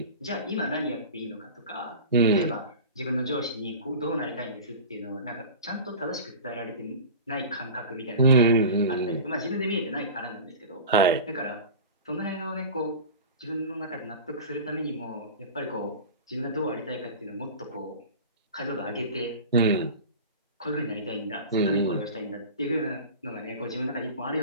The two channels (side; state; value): both; inverted; correlation -0.34